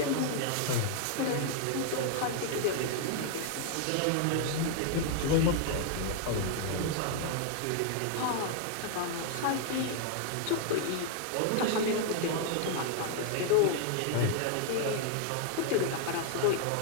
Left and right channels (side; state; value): both; different; correlation 0.00